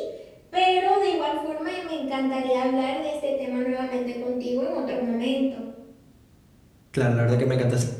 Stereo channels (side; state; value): both; identical; correlation 1.00